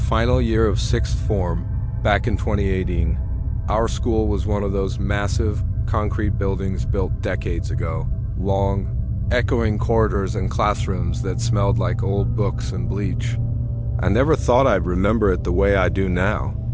year of 6th form, back in 2018. Our school was one of those massive, concrete buildings built decades ago. Long, echoing corridors and classrooms that smelled like old books and bleach. I never thought I'd remember it the way I do now.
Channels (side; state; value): both; identical; correlation 1.00